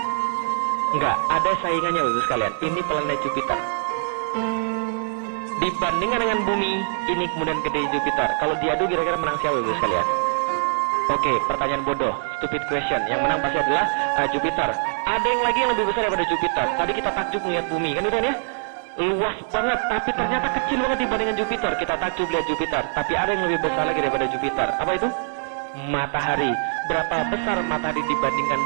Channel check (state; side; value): silent; left; digital silence